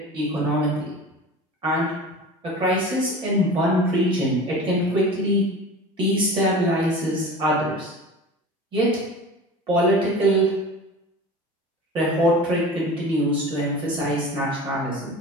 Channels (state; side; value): normal; both; correlation 0.36